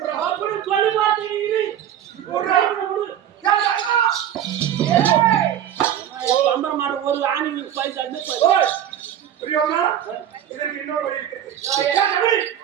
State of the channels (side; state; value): left; quieter; 10.4 dB